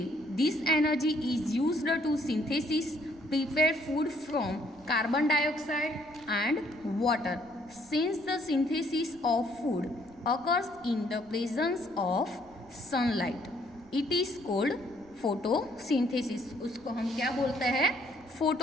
energy is used to synthesis prepare food from carbon dioxide and water. Since the synthesis of food occurs in the presence of sunlight, it is called photosynthesis। उसको हम क्या बोलते हैं,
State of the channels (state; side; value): noise; right; rumble, 27 dB below the sound